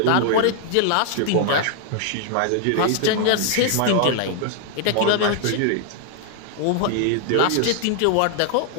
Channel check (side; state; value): both; different; correlation 0.00